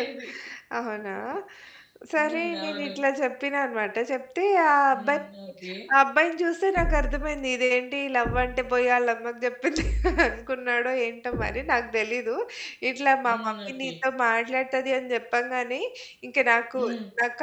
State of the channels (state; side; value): identical; both; correlation 1.00